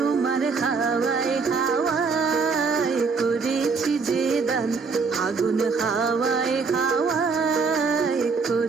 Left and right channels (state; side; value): quieter; left; 4.8 dB